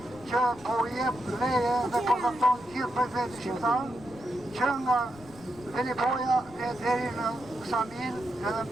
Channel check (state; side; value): noise; left; rumble, 21 dB below the sound